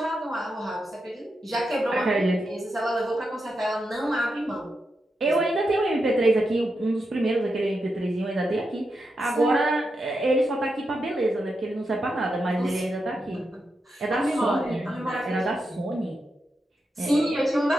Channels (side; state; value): both; normal; correlation 0.86